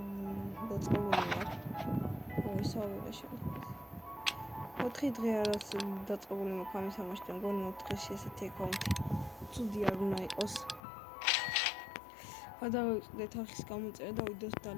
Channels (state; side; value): drops out; right; at 10.8 s